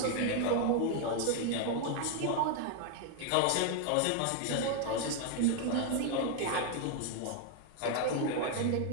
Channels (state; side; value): different; both; correlation 0.00